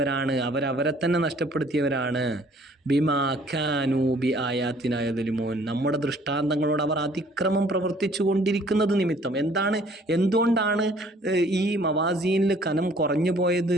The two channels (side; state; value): both; normal; correlation 0.58